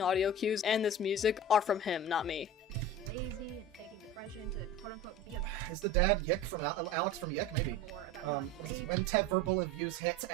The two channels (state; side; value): normal; both; correlation 0.33